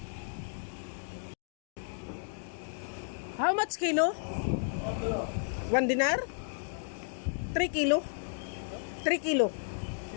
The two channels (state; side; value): silent; right; digital silence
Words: How much kilo? 1 dinar? 3 kilo? 3 kilo?